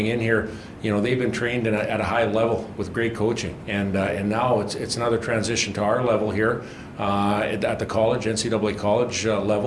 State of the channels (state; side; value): identical; both; correlation 1.00